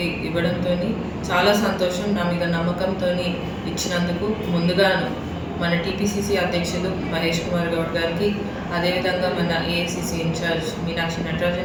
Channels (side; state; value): both; identical; correlation 1.00